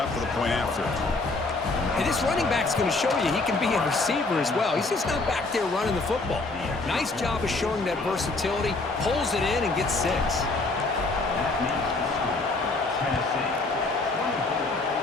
for the point after. And this running back's going to show you he can be a receiver as well. He's just not back there running the football. Nice job of showing that versatility. Pulls it in and gets 6.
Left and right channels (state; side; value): quieter; right; 3.4 dB